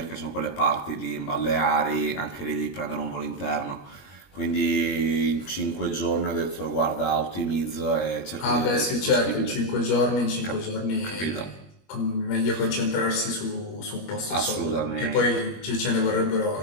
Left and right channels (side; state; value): right; late; 21 ms